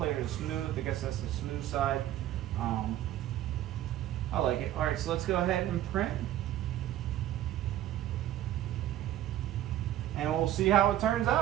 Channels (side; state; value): left; quieter; 12.9 dB